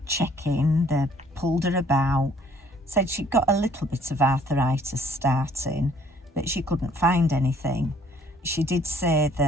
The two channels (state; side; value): normal; both; correlation 0.60